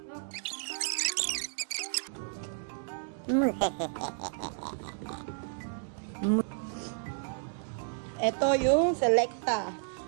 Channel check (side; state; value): left; silent; 56 dB below the other